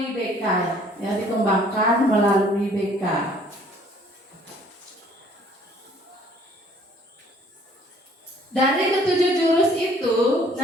BK ya, dikembangkan melalui BK. Dari ketujuh jurus itu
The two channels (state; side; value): normal; both; correlation 0.58